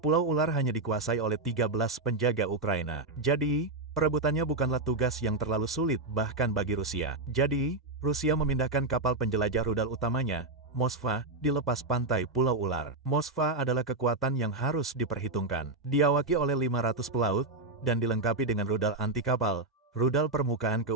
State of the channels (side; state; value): left; quieter; 3.2 dB